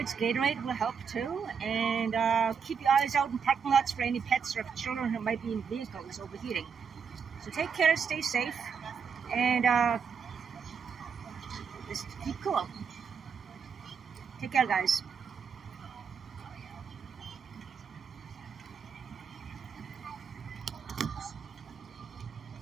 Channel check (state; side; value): quieter; left; 6.5 dB